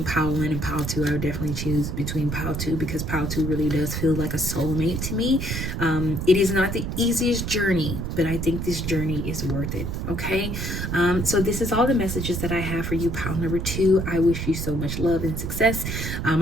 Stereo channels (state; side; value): noise; right; rumble, 3 dB below the sound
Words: pile 1 and pile 2, I would definitely choose between pile 2, because pile 2 really does feel like a soulmate to me. It is not the easiest journey, but I think this journey is worth it. Okay, so this is all the messages that I have for you, pile number 2. I wish you so much love and success.